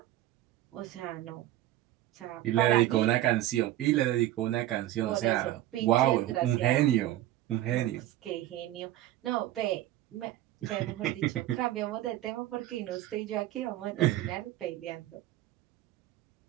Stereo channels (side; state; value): left; quieter; 14.4 dB